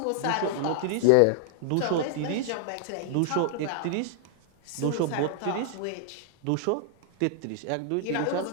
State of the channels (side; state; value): both; different; correlation -0.01